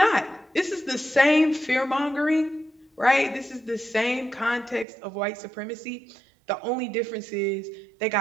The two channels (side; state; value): left; drops out; at 4.9 s